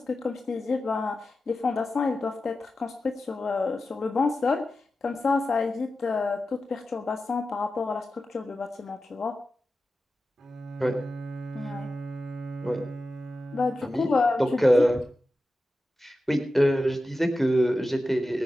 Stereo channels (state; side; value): normal; both; correlation 0.93